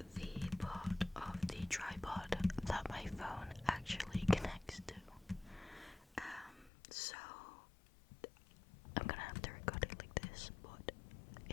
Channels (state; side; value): drops out; right; at 6.7 s